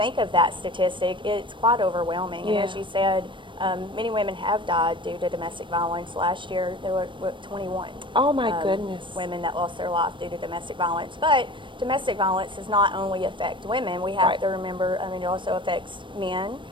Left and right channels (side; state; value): left; late; 0.24 ms